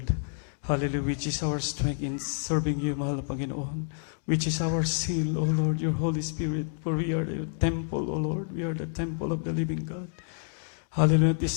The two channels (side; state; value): right; silent; digital silence